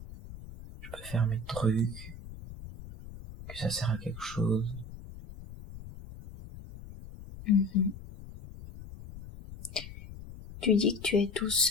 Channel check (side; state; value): left; noise; rumble, 14 dB below the sound